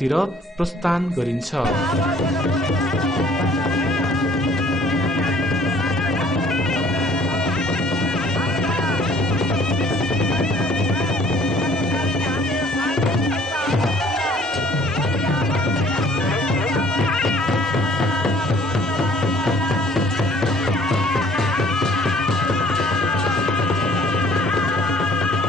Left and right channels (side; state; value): both; normal; correlation 0.57